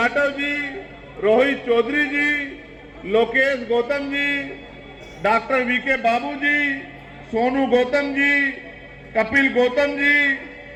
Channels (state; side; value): identical; both; correlation 1.00